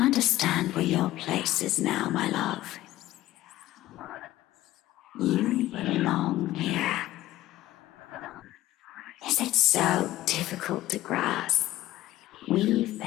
where your place is now, my love. You belong here. Is it so difficult to grasp? We've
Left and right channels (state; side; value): quieter; right; 15.5 dB